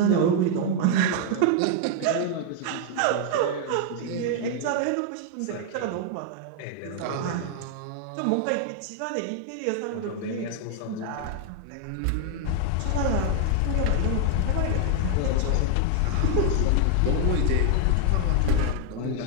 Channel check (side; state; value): both; different; correlation 0.00